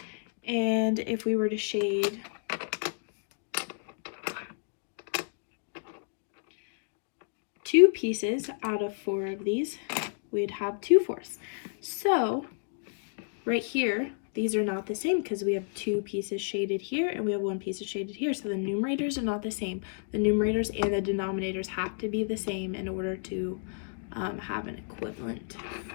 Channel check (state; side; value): silent; right; digital silence